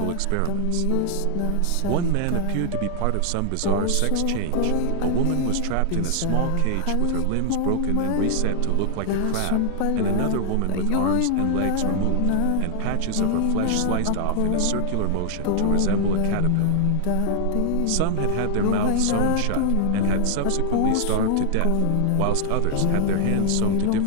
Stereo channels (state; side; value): different; both; correlation 0.00